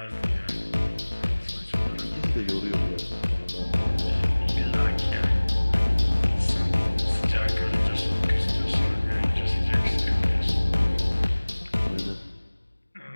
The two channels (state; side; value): inverted; both; correlation -1.00